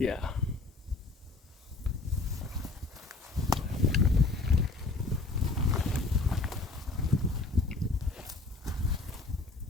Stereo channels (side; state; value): right; quieter; 3.6 dB